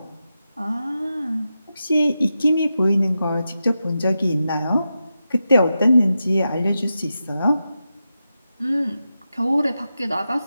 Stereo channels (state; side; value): inverted; both; correlation -0.90